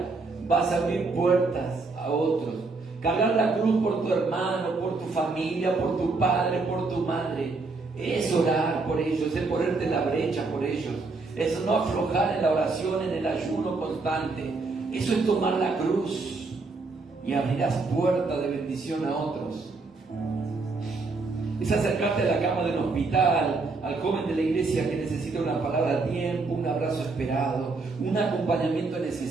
vas a abrir puertas a otros. Cargar la cruz por tu hermano, por tu familia, por tu padre, por tu madre, es orar por ellos, es ponerte en la brecha por ellos. Es no aflojar en la oración, en el ayuno constante. Eso es tomar la cruz. y abrirás puerta de bendición a otros. Es acercarte a la cama del hospital, al joven de la iglesia que necesita una palabra a tiempo, un abrazo esperado, un acompañamiento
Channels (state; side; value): quieter; left; 3.8 dB